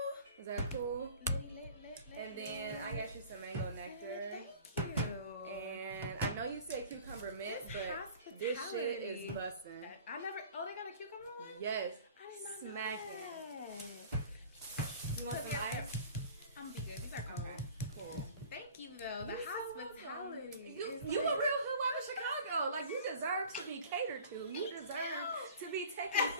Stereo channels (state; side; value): inverted; both; correlation -0.45